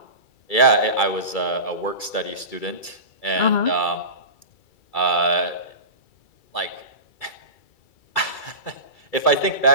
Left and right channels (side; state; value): right; late; 2.3 ms